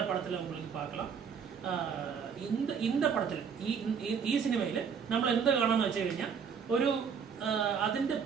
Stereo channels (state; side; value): quieter; left; 6.7 dB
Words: படத்துல உங்களுக்கு பார்க்கலாம். இந்த പടത്തിൽ ഈ സിനിമയിൽ നമ്മൾ എന്ത് കാണാന്ന് വെച്ച് കഴിഞ്ഞാൽ ഒരു അതിന്റെ